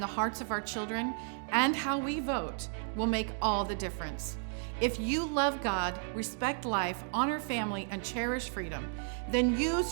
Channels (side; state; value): left; silent; 56 dB below the other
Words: hearts of our children and how we vote will make all the difference. If you love God, respect life, honor family, and cherish freedom, then